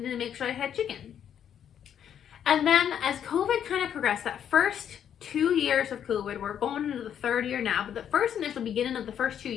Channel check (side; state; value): right; quieter; 9.1 dB